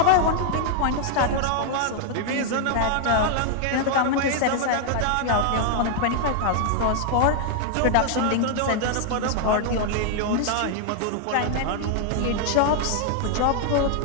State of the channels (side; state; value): both; different; correlation 0.00